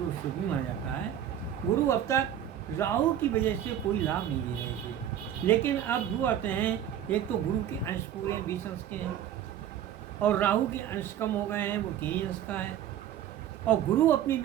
शुभ भी माना जाता है। गुरु अब तक राहु की वजह से कोई लाभ नहीं दे रहे थे, लेकिन अब दो आते हैं। एक तो गुरु के अंश पूरे 20 अंश के हैं, और राहु के अंश कम हो गए हैं, वो 3 अंश का है, और गुरु अपनी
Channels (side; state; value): left; quieter; 10.4 dB